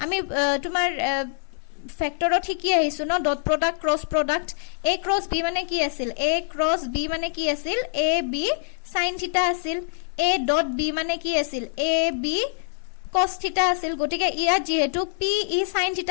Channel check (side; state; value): right; silent; 62 dB below the other